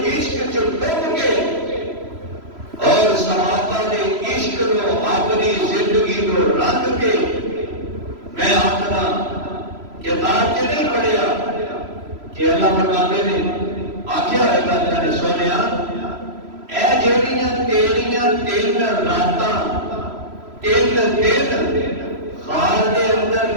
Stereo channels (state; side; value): late; left; 3.0 ms